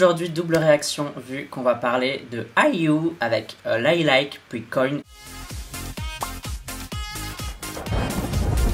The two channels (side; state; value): both; identical; correlation 1.00